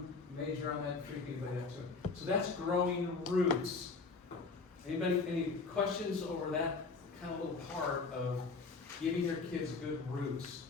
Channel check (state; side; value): quieter; right; 4.3 dB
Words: major on that, freak anybody out too. So that's growing roots. Any questions over that kind of little part of giving your kids good roots